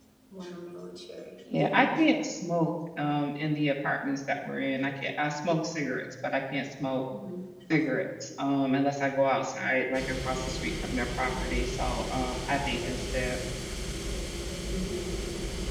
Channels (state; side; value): identical; both; correlation 1.00